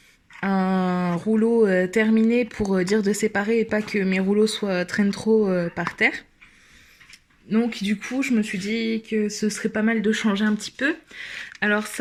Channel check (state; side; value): identical; both; correlation 1.00